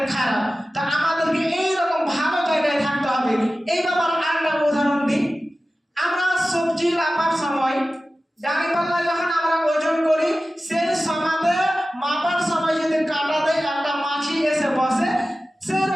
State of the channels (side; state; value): both; normal; correlation 0.95